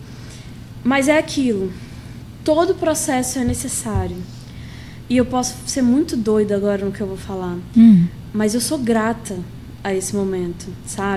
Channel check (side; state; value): both; identical; correlation 1.00